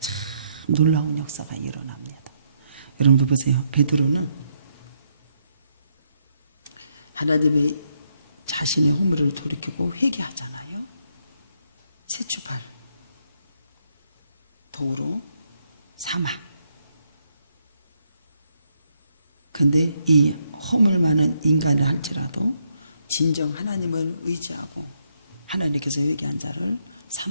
놀라운 역사가 일어납니다. 여러분들 보세요. 베드로는 하나님의 자신의 허물을 돌이키고 회개하잖아요. 새 출발, 도로 사막. 근데 이 허물 많은 인간을 할지라도 진정 하나님을 의지하고 하나님께서 회개한 자를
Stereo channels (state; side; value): inverted; both; correlation -0.76